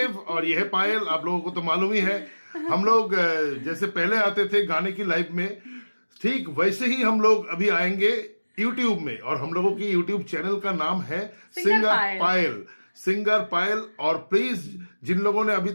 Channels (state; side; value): inverted; both; correlation -1.00